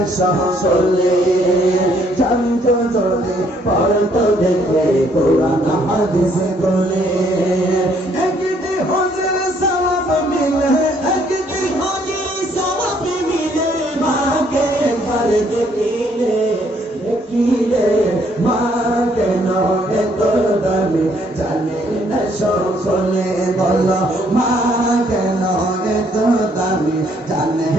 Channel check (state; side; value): normal; both; correlation 0.67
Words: সকলে। জানতো যদি পড়তো দেখে কোরআন হাদিস খুলে। একটি হজের সওয়াব মিলে, একটি হজের সওয়াব মিলে, মাকে একবার দেখিলে, দেখিলে মা কেন এত দামি জানে না সকলে, বলো মা কেন এত দামি জানে